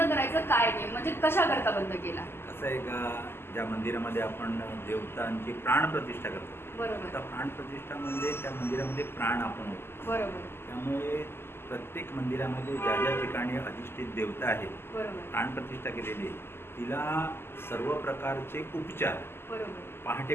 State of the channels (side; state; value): right; late; 0.12 ms